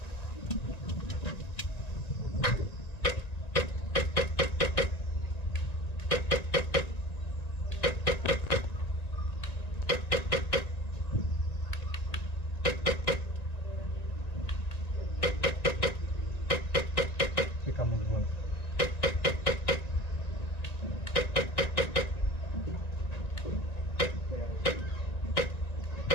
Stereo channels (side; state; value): right; late; 1.9 ms